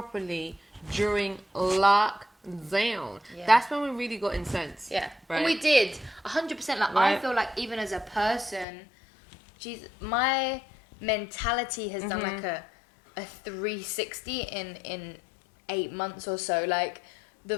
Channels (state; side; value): drops out; right; at 8.7 s